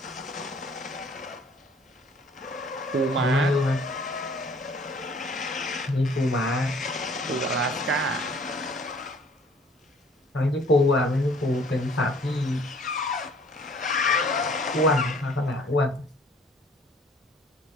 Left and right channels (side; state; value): both; normal; correlation 0.55